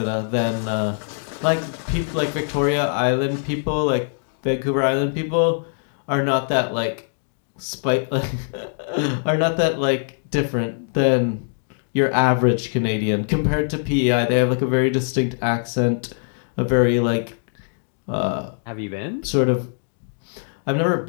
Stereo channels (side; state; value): right; silent; digital silence